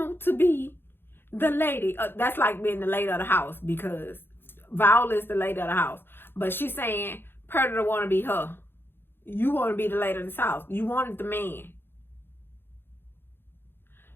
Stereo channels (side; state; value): right; late; 0.10 ms